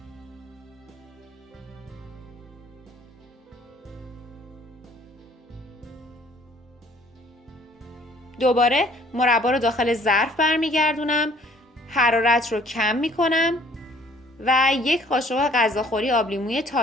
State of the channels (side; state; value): both; normal; correlation 0.57